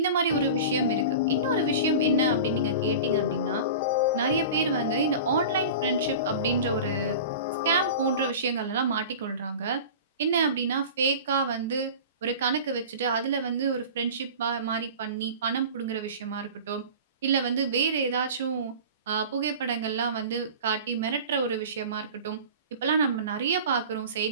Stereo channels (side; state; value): both; inverted; correlation -0.35